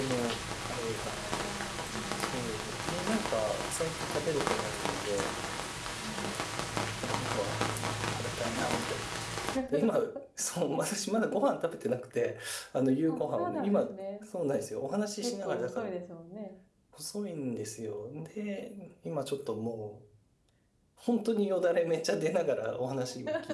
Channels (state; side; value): identical; both; correlation 1.00